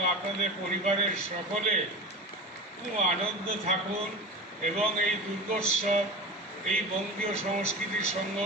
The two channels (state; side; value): normal; both; correlation 0.31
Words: আপনাদের পরিবারের সকলে খুব আনন্দ থাকুন এবং এই দুর্গোৎসব, এই বঙ্গীয় সংস্কৃতি